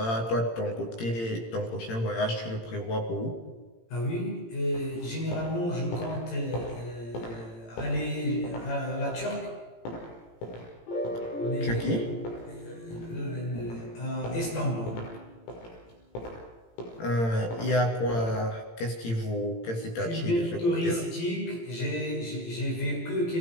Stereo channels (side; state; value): right; late; 18 ms